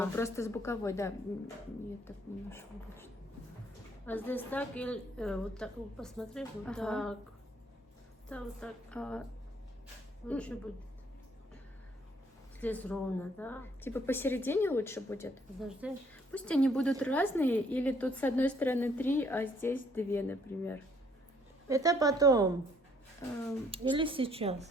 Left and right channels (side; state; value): both; normal; correlation 0.64